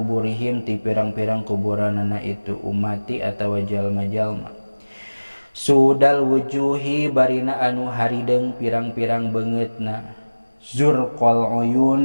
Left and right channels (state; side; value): inverted; both; correlation -1.00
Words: ti pirang-pirang kuburanana itu umati atawa jalma-jalma sudal wujuhi barina anu harideng pirang-pirang beungeutna zurqal